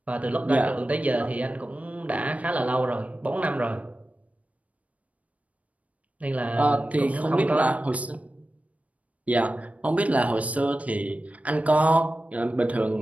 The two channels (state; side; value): late; left; 0.068 ms